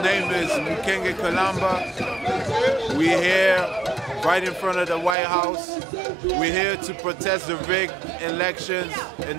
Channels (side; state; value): left; drops out; at 5.2 s